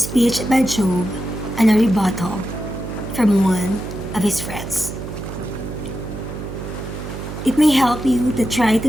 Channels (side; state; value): right; noise; hum, 8 dB below the sound